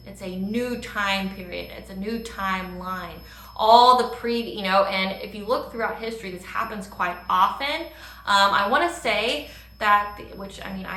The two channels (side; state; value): both; identical; correlation 1.00